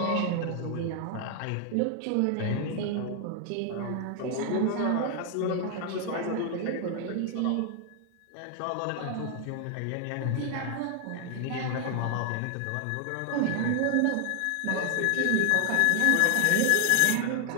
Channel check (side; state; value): both; different; correlation 0.00